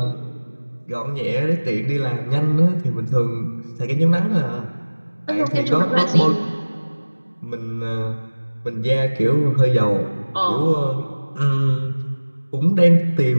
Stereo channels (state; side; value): inverted; both; correlation -1.00